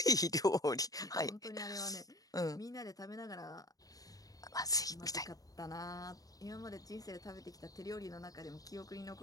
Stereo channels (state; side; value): late; right; 0.18 ms